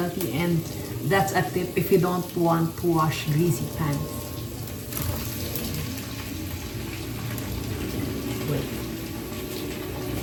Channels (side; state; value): both; identical; correlation 1.00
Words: and that's a tip if you don't want to wash greasy pans.